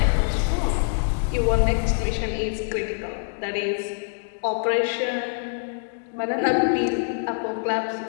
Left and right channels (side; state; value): right; silent; digital silence